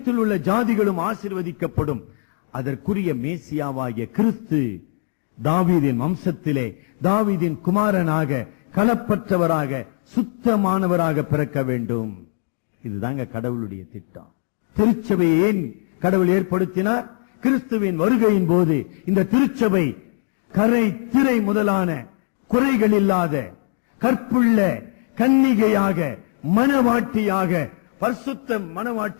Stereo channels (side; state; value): right; silent; digital silence